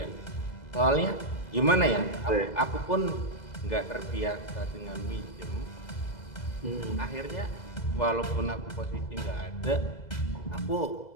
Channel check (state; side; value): late; right; 2.0 ms